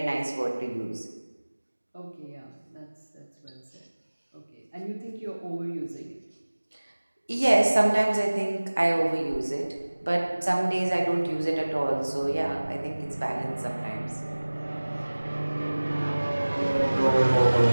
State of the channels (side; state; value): both; inverted; correlation -1.00